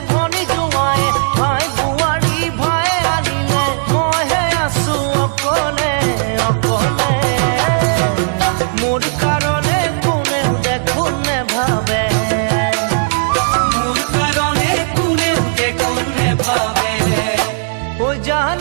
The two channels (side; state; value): left; silent; 60 dB below the other